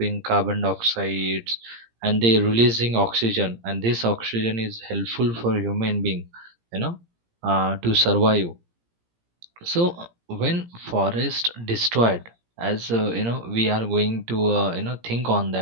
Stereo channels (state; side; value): late; left; 17 ms